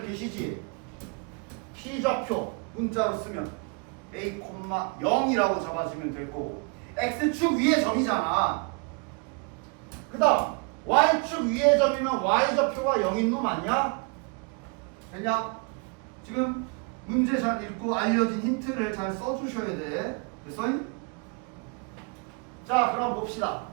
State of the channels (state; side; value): quieter; left; 33.5 dB